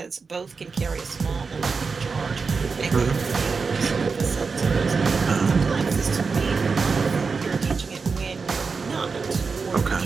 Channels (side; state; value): left; quieter; 4.9 dB